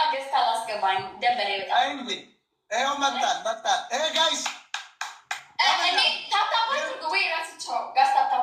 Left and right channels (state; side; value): identical; both; correlation 1.00